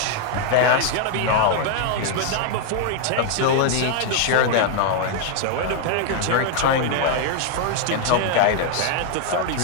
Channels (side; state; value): both; different; correlation 0.00